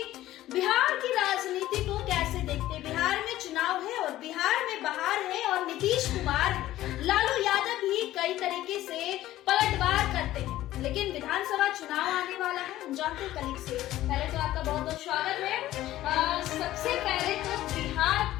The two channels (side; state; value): right; quieter; 14.7 dB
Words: बिहार की राजनीति को कैसे देखते हैं। बिहार में चुनाव है और बिहार में बहार है और नीतीश कुमार, लालू यादव भी कई तरीके से पलटवार करते हैं, लेकिन विधानसभा चुनाव आने वाला है। हम जानते हैं कलीग से। पहले तो आपका बहुत बहुत स्वागत है। सबसे पहले तो